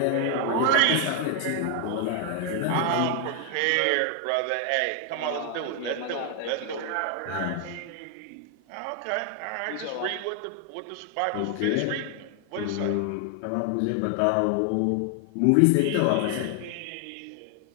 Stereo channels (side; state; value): both; different; correlation 0.00